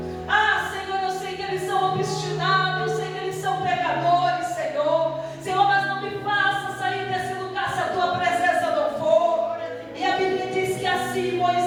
Senhor, eu sei que eles são obstinados, eu sei que eles são pecadores, Senhor. Senhor, mas não me faça sair desse lugar se a tua presença não for. E a Bíblia diz que assim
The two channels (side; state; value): both; identical; correlation 1.00